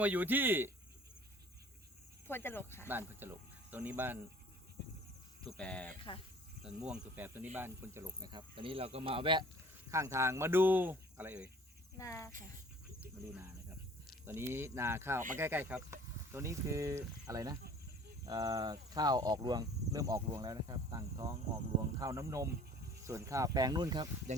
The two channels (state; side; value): normal; both; correlation 0.50